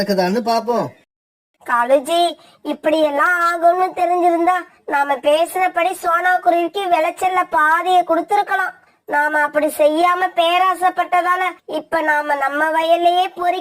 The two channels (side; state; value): both; identical; correlation 1.00